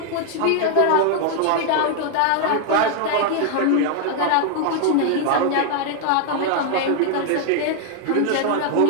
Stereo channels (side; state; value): both; different; correlation 0.00